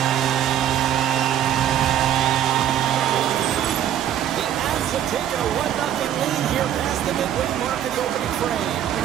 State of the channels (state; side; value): quieter; left; 10.7 dB